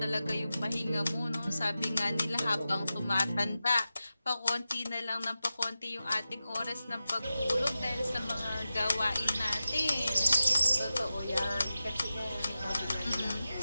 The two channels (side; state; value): both; inverted; correlation -0.93